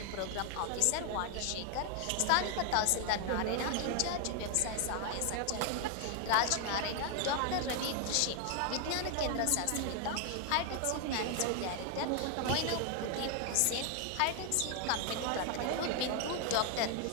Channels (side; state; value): both; different; correlation 0.00